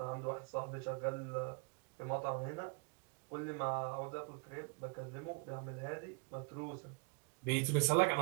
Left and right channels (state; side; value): quieter; left; 29.3 dB